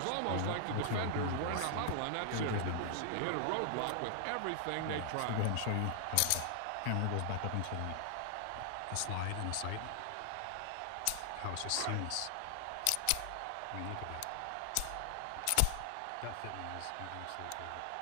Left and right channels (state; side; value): different; both; correlation 0.00